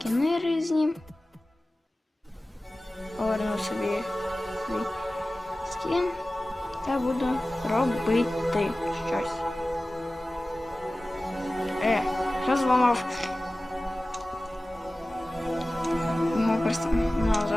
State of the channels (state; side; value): normal; both; correlation 0.97